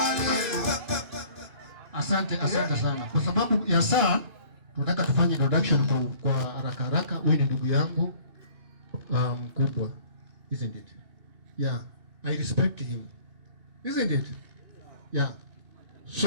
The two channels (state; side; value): late; left; 2.6 ms